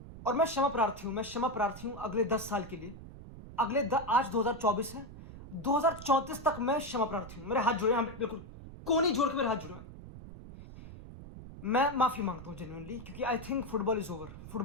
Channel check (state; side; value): noise; right; rumble, 14 dB below the sound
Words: और मैं क्षमा प्रार्थी हूं, मैं क्षमा प्रार्थी हूं अगले 10 साल के लिए। आज 2024 है, 2034 तक मैं क्षमा प्रार्थी हूं। मेरे हाथ जुड़े हैं, बिल्कुल कोनी जोड़ के मेरे हाथ जुड़े हैं। मैं माफी मांगता हूं जेन्युइनली, क्योंकि I think football is over.